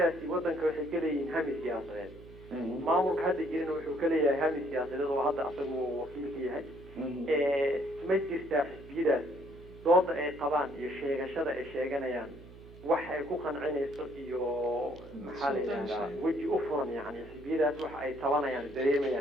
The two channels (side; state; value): right; noise; hum, 19 dB below the sound